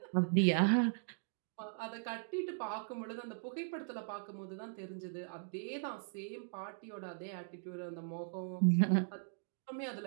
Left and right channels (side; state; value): left; silent; digital silence